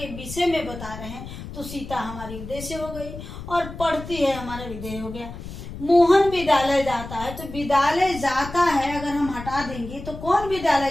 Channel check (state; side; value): noise; left; rumble, 11 dB below the sound